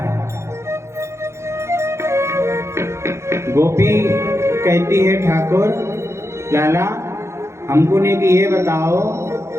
गोपी कहती है ठाकुर लाला हमको ने कि ये बताओ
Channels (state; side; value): late; left; 0.13 ms